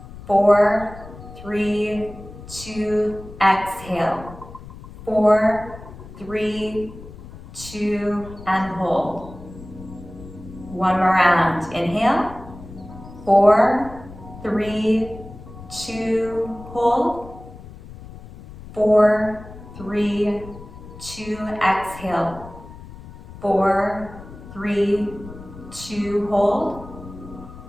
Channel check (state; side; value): noise; left; rumble, 16 dB below the sound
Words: 4, 3, 2, exhale. 4, 3, 2, and hold. One more round. Inhale. 4, 3, 2, hold. 4, 3, 2, exhale. 4, 3, 2, hold.